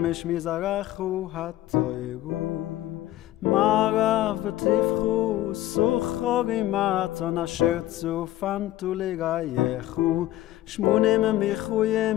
מזרחו התוירו מערב ותפחו סוחרים מתון אשר צופנתו לרייכו שמונים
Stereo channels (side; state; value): right; quieter; 14.8 dB